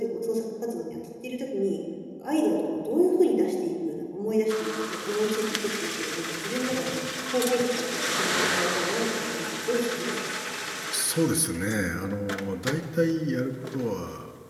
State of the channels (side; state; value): both; identical; correlation 1.00